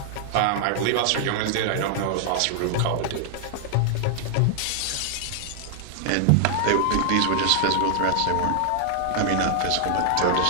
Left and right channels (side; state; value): both; different; correlation 0.00